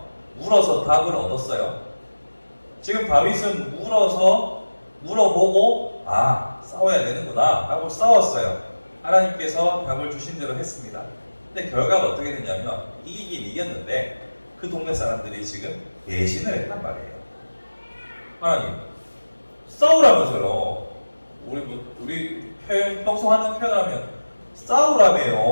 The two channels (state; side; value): inverted; both; correlation -1.00